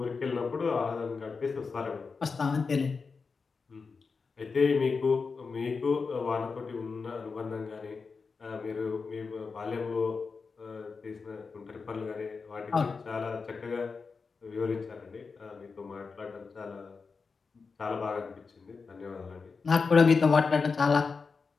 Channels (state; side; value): quieter; right; 4.8 dB